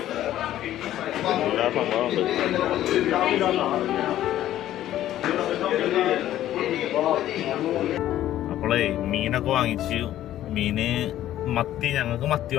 എല്ലാ സംഭവമുണ്ട്. അപ്പോളേ മീനൊക്കെ വാങ്ങിച്ചു. മീന് മത്തി, ഞങ്ങൾക്ക് മത്തി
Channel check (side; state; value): right; quieter; 12.9 dB